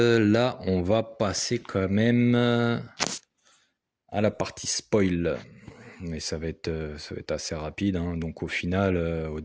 on va passer quand même à la partie spoil. Mais ça va être assez rapide, hein. Donc, au final, au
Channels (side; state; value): both; identical; correlation 1.00